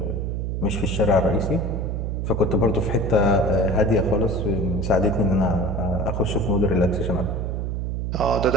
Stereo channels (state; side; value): noise; right; hum, 2 dB below the sound